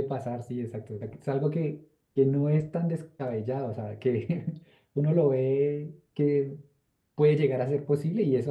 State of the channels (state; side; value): identical; both; correlation 1.00